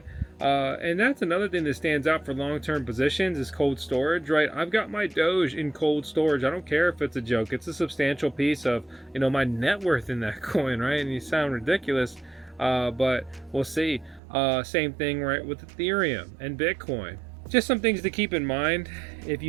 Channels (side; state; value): left; drops out; at 14.2 s